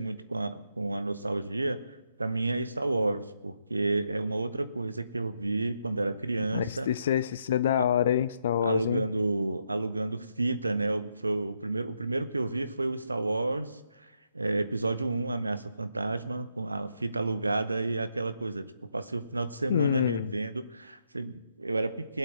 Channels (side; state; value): both; inverted; correlation -0.78